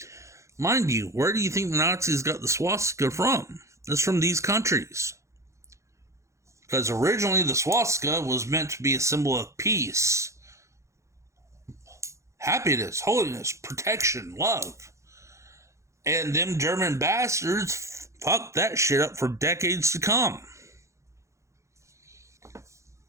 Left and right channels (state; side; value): late; left; 0.14 ms